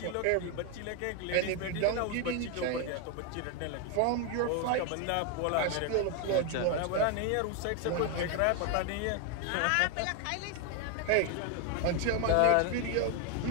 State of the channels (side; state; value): both; different; correlation 0.01